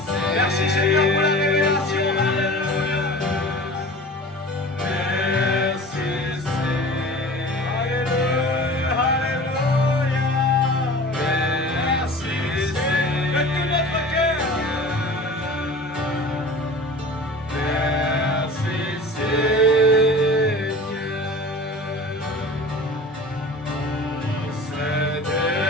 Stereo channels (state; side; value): normal; both; correlation 0.39